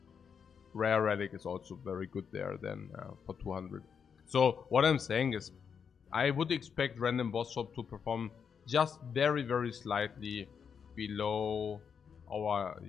rare relic is also very good there then for 200. So what I'm saying is, I would expect random boss swap to perform just very slightly below our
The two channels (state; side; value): quieter; right; 6.8 dB